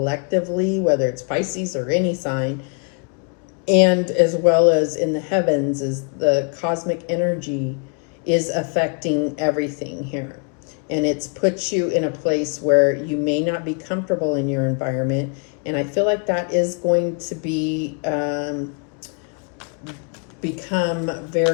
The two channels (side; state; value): right; quieter; 38.5 dB